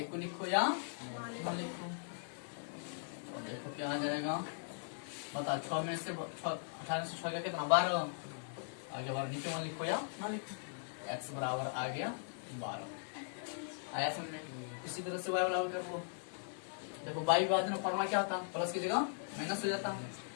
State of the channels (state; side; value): silent; right; 52 dB below the other